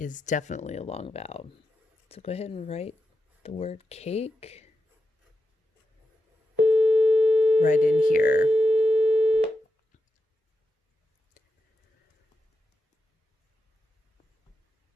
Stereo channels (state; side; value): normal; both; correlation 0.88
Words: is definitely a long vowel. So go ahead and write the word cake right in here.